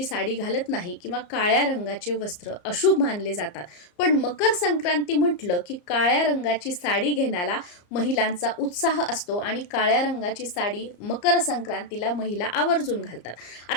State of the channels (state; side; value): late; right; 34 ms